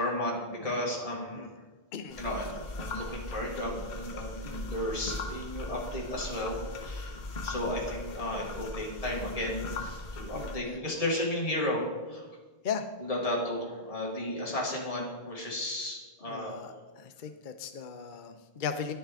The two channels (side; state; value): right; late; 1.7 ms